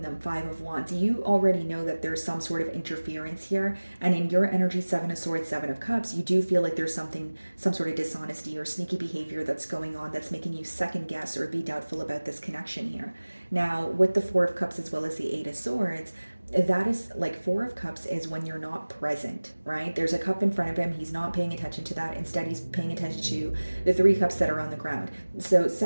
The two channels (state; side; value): inverted; both; correlation -1.00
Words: them, Five of Wands, you already know that there's some sort of interference here. And in your energy, Seven of Swords, Seven of Cups, you do feel like there's some sort of dishonesty or sneaky behavior that's going on that's making you second guess or be doubtful about this connection here. Now, with the Four of Cups as well as the Eight of Swords, that is like Four of Cups is when you're not present, right? There's a cup in front of him. He's not paying attention to that. Instead, he's paying attention to the Three Cups that are on the ground. So